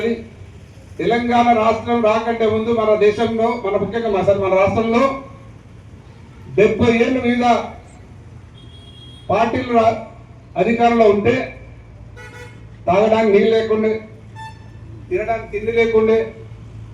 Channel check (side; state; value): both; identical; correlation 1.00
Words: తెలంగాణ రాష్ట్రం రాకంటే ముందు మన దేశంలో, ముఖ్యంగా మన రాష్ట్రంలో 70 ఏళ్ళు మీద పార్టీలు అధికారంలో ఉంటే తాగడానికి నీళ్ళు లేకుండే, తినడానికి తిండి లేకుండే,